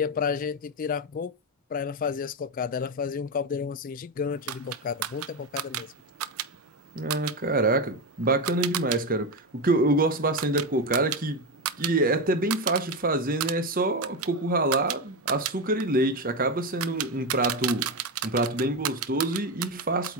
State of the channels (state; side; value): normal; both; correlation 0.13